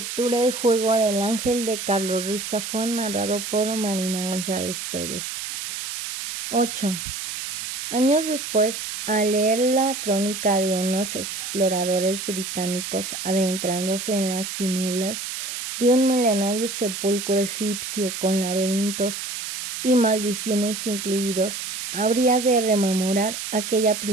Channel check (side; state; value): right; noise; hiss, 6 dB below the sound